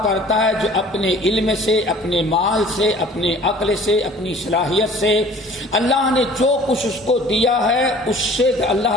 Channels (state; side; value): normal; both; correlation 0.49